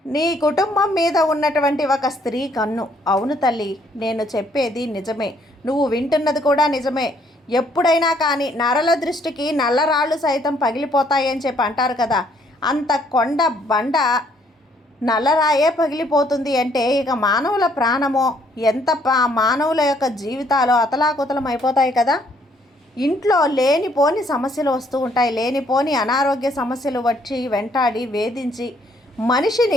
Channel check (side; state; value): both; normal; correlation 0.66